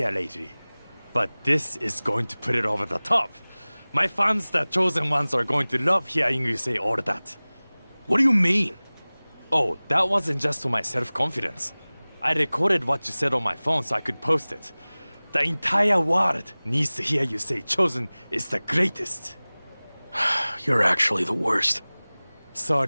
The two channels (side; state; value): both; inverted; correlation -1.00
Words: lately. But this is going to put it over the top. My fans, the Chosen ones, are going to love hearing you say all that. What do you mean? Oh, that wasn't just for my self-confidence. I recorded what you said on my phone so I could post it. The entire world needs to hear you say Chosen is the greatest. You're actually the worst.